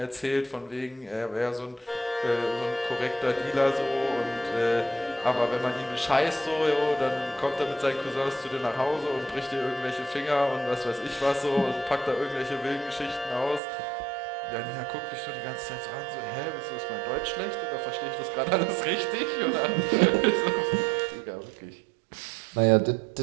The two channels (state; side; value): drops out; left; at 13.6 s